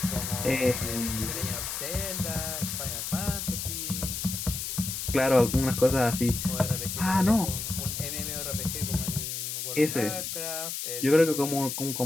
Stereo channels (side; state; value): left; noise; hiss, 4 dB below the sound